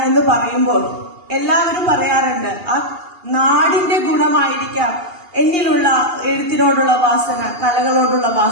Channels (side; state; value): left; late; 2.8 ms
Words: എന്ന് പറയുമ്പോൾ എല്ലാവരും പറയാറുണ്ട് ആ നാടിന്റെ ഗുണമായിരിക്കാം എന്നിലുള്ള എഴുത്തിനോടുള്ള വാസന, കലകളോടുള്ള